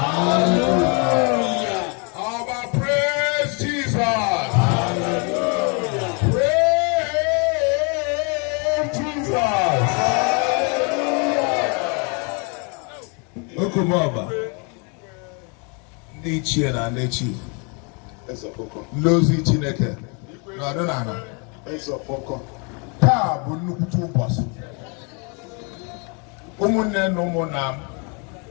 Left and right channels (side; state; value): right; quieter; 34.6 dB